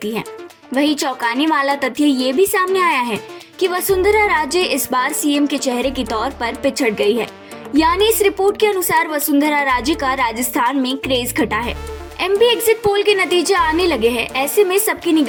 है। वहीं चौंकाने वाला तथ्य ये भी सामने आया है कि वसुंधरा राजे इस बार सीएम के चेहरे के तौर पर पिछड़ गई है। यानी इस रिपोर्ट के अनुसार वसुंधरा राजे का राजस्थान में क्रेज घटा है। एमपी एग्जिट पोल के नतीजे आने लगे हैं। ऐसे में सबकी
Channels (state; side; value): identical; both; correlation 1.00